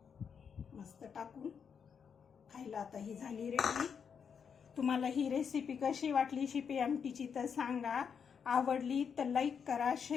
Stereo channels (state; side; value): quieter; right; 6.8 dB